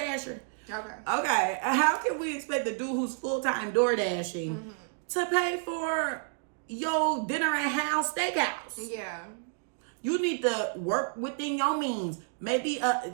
Okay. How can we expect the dude who's full-time DoorDashing to pay for your dinner at House Steakhouse? Yeah. You need to work within your means. Maybe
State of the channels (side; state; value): left; silent; digital silence